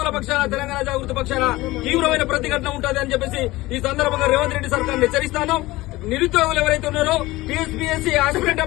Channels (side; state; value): right; quieter; 19.2 dB